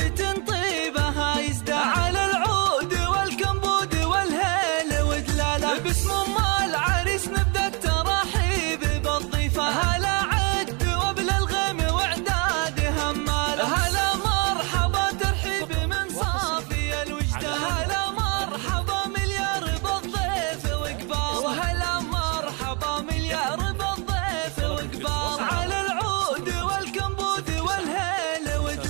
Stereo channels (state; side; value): quieter; left; 32.2 dB